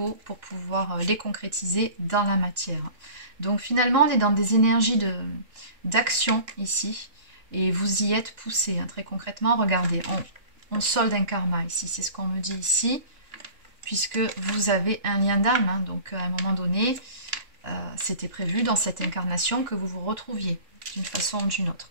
pour pouvoir les concrétiser dans la matière. Donc finalement, on est dans des énergies d'action ici. Et vous y êtes poussé, hein, très concrètement. Regardez, on solde un karma ici, c'est ce qu'on me dit ici, puisque vous avez un lien d'âme. Hein, donc à un moment donné, c'était prévu dans cette incarnation que vous vous retrouviez d'une façon ou d'une autre.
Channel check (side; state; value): left; late; 2.9 ms